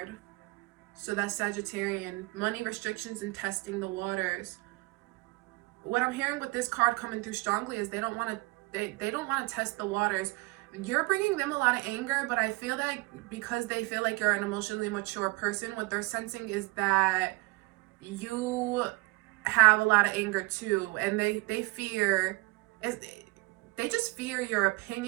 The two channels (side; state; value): left; quieter; 24.9 dB